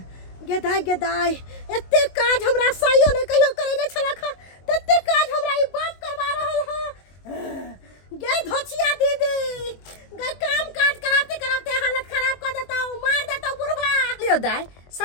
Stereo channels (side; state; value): right; late; 22 ms